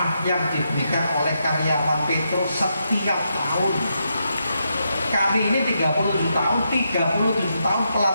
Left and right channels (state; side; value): inverted; both; correlation -0.82